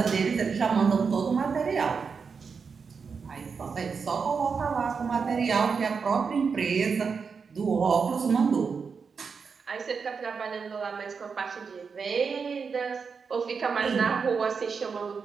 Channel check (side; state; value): left; quieter; 5.6 dB